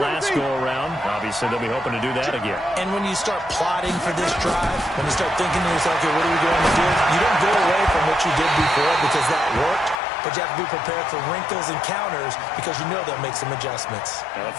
go-around. Obviously, they'll be hoping to do that again. And when you start plotting for this drive, when you start thinking to yourself, okay, what are we going to do? You don't go away from what you did before because that worked. But you have to be prepared for wrinkles and counters because you know they'll make some adjustments. Now, the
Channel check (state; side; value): drops out; right; at 10.0 s